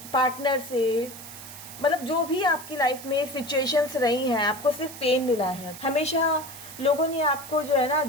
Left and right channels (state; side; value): noise; right; hiss, 14 dB below the sound